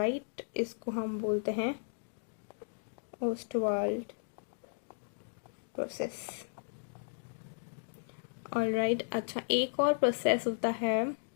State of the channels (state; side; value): silent; right; digital silence